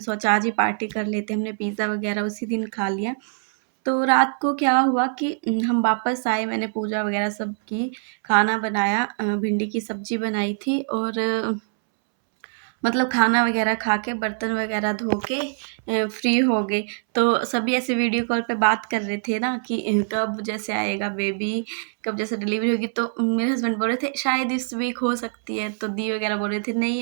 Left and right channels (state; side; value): silent; left; 63 dB below the other